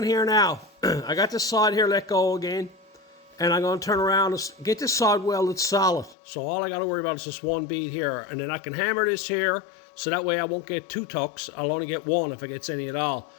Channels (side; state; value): right; drops out; at 6.2 s